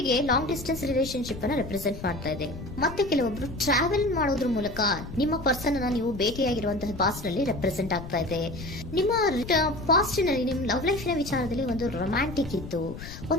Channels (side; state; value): left; noise; rumble, 11 dB below the sound